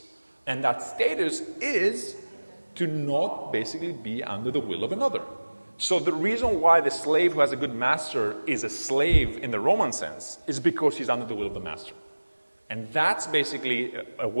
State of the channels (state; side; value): inverted; both; correlation -1.00